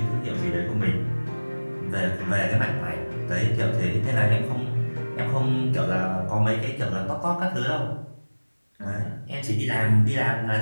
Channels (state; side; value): inverted; both; correlation -1.00